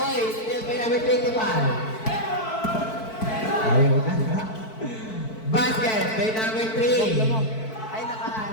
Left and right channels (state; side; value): late; right; 4.6 ms